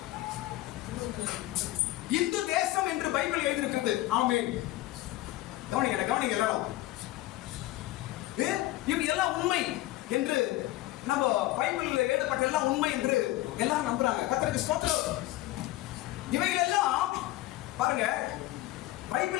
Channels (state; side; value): quieter; right; 16.9 dB